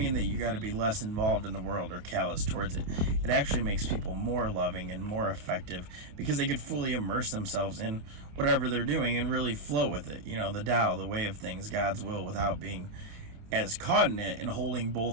that you got to be less involved in the world or callous towards it. It actually makes people more loving and more effective, because they could fully immerse themselves in whatever they're doing and really flow with it. The Tao, the way of things, God's will, without being as caught in it, and holding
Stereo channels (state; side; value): late; left; 28 ms